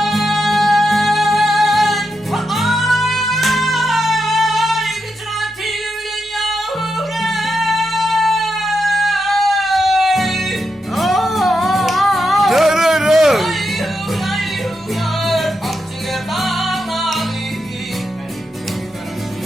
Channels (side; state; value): both; normal; correlation 0.85